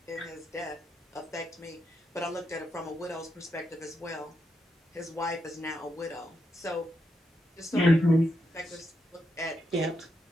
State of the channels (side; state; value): both; normal; correlation 0.83